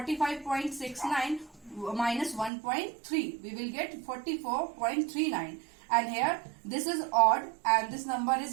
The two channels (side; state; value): left; drops out; at 2.5 s